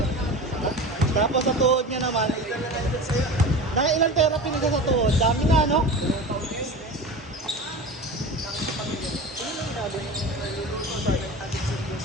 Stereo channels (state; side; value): normal; both; correlation 0.31